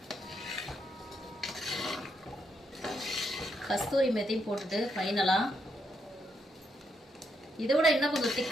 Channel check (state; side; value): normal; both; correlation 0.78